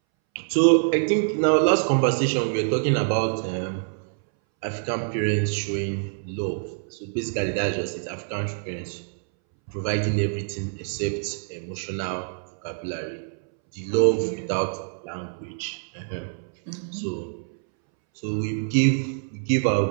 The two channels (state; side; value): silent; left; 61 dB below the other